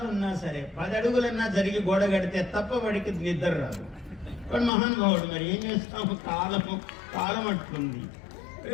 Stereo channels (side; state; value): right; drops out; at 4.7 s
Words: ఉన్నా సరే 10 అడుగులన్నా జరిగి గోడ కడితే తప్ప వాడికి నిద్ర రాదు. వాడు మహానుభావుడు. మరి ఏం చేస్తాము? కాలం అట్లుంది.